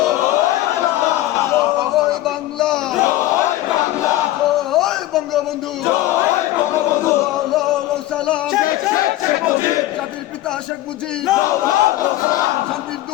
জয় বাংলা জয় বাংলা জয় বঙ্গবন্ধু জয় বঙ্গবন্ধু সালাম শেখ মুজিব জাতির পিতা শেখ মুজিব সালাম শান্তির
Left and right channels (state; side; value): quieter; right; 15.5 dB